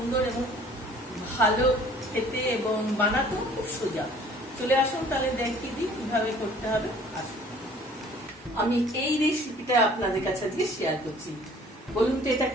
এবং ভালো খেতে এবং বানাতেও খুব সোজা। চলে আসুন তাহলে দেখিয়ে দিই কিভাবে করতে হবে। আসুন, আমি এই রেসিপিটা আপনাদের কাছে আজকে শেয়ার করছি। বলুন তো এটা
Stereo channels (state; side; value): normal; both; correlation 0.53